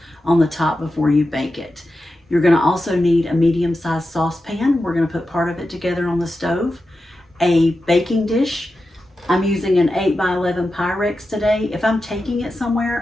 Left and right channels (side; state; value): both; normal; correlation 0.91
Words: on the top before you bake it. You're going to also need a medium-sized saucepan. We're going to put part of it together on the stove. A baking dish. I'm using an 8x11 Pyrex today. If I'm taking it somewhere,